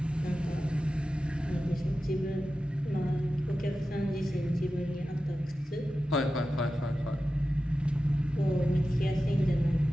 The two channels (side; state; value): both; normal; correlation 0.93